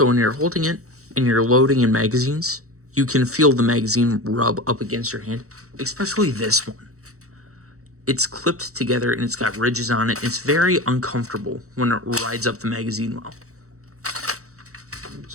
when you're holding it and you're loading in magazines, you can feel the magazine rub up against your hand, especially this one. it's clipped together and it's got ridges on it. It's very uncomfortable when it rides up the magazine well.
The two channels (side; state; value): left; late; 0.65 ms